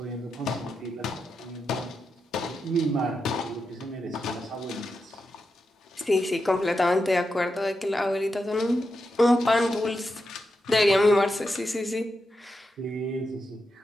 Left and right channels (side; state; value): both; normal; correlation 0.87